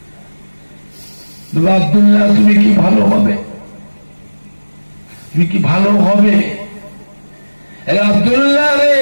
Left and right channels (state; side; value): inverted; both; correlation -1.00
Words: আব্দুল্লাহ তুমি কি ভালো হবে? তুমি কি ভালো হবে? আব্দুল্লাহ রে,